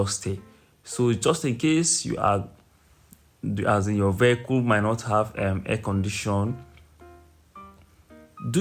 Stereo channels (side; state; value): both; identical; correlation 1.00